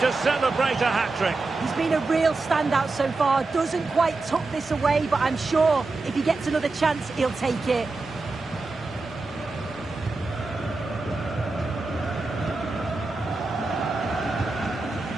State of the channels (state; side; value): quieter; left; 3.6 dB